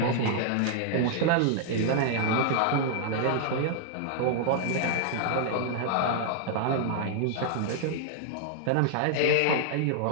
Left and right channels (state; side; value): different; both; correlation -0.01